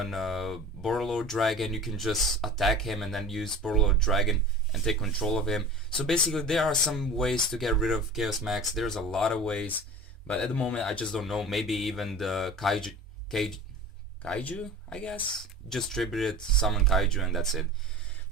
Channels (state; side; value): normal; both; correlation 0.37